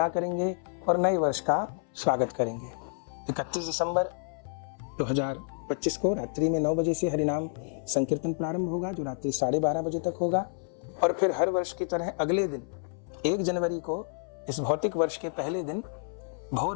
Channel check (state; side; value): silent; right; 58 dB below the other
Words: करेंगे और नए वर्ष का स्वागत करेंगे। 31 दिसंबर 2025 को रात्रि में 9 बजे से हरिनाम संकीर्तन प्रारंभ होगा, जो रात्रि 12:30 बजे तक होगा। और फिर हर वर्ष की तरह अगले दिन 1 जनवरी को इस भौतिक वर्ष के पहले दिन